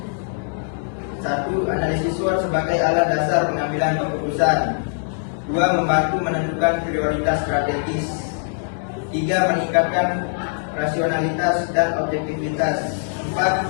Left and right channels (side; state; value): right; silent; digital silence